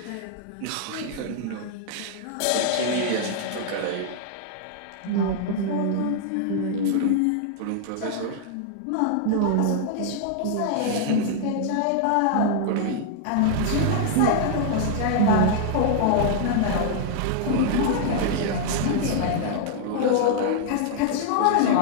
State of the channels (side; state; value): both; different; correlation -0.01